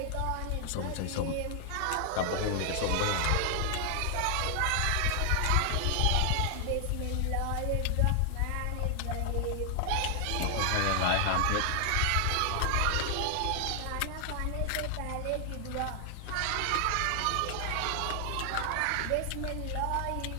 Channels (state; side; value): different; both; correlation 0.00